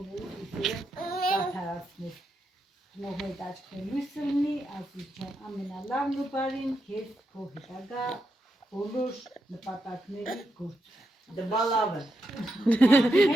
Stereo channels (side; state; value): both; normal; correlation 0.84